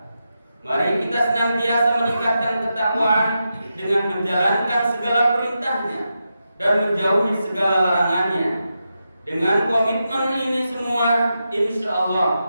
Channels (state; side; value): inverted; both; correlation -0.88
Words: Mari kita senantiasa meningkatkan ketakwaan dengan menjalankan segala perintahnya dan menjauhi segala larangannya. Dengan komitmen ini semua, insya